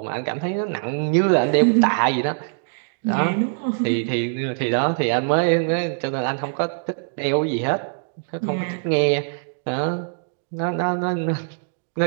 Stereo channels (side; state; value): left; silent; digital silence